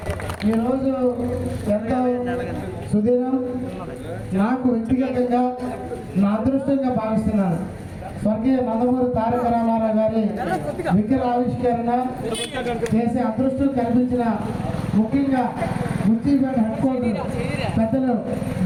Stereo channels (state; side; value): identical; both; correlation 1.00